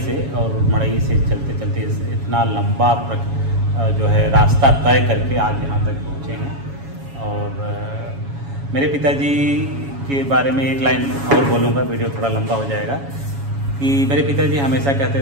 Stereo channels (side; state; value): left; late; 7.2 ms